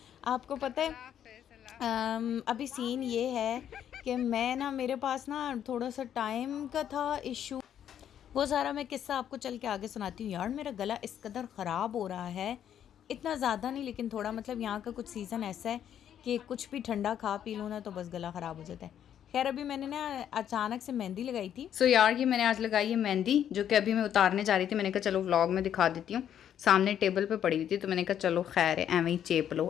आपको। पता है अभी सीन ये है कि मैं ना मेरे पास ना थोड़ा सा टाइम का था इशू। वो सारा मैं किस्सा आपको चल के आगे सुनाती हूँ। यार मेरा गला इस कदर ख़राब हो रहा है, इतना ज़्यादा नहीं लेकिन थोड़ा, मतलब यहाँ का कुछ सीज़न ऐसा है कि कुछ भी ठंडा खा पी लूँ ना तो बस गला ख़राब हो जाता है। खैर अभी मैंने ना अचानक से मेहंदी लगाई थी। यार ये मैंने आज लगाई है मेहंदी, जो कि अभी मैं उतारने जा रही थी। मैंने कहा चलो व्लॉग में दिखा देती हूँ। सामने टेबल पे पड़ी हुई थी तो मैंने कहा चलो खैर है, एवं ही चेप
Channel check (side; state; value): right; quieter; 9.8 dB